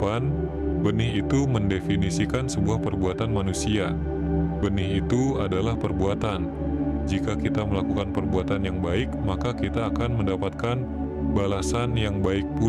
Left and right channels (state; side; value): identical; both; correlation 1.00